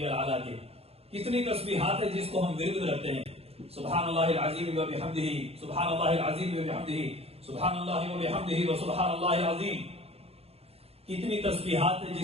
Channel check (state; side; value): late; left; 0.29 ms